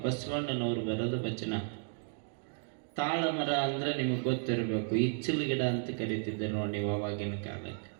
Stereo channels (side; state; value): left; silent; 55 dB below the other